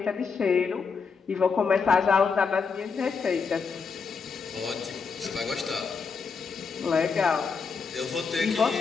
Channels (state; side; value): quieter; right; 5.3 dB